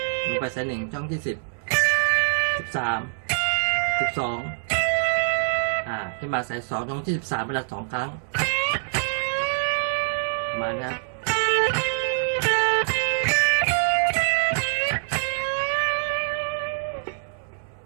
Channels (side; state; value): left; silent; 62 dB below the other